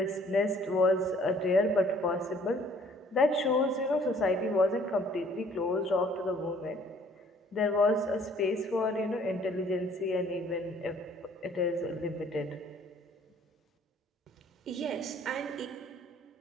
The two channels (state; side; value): normal; both; correlation 0.58